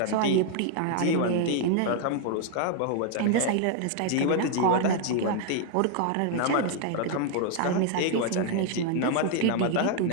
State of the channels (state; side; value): different; both; correlation 0.00